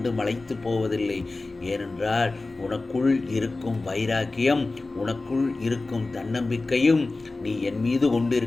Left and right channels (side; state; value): right; quieter; 3.3 dB